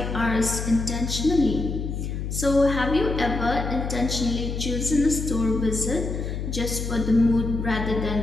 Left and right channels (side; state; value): left; noise; hum, 4 dB below the sound